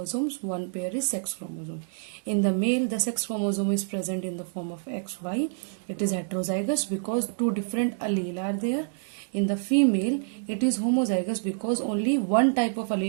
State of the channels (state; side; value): silent; left; 60 dB below the other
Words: 1 pair is sex chromosome. In the male the sex chromosome is present in the form of XY. It is heterozygous because 2 different allele are there. In the female it is homozygous because only one type of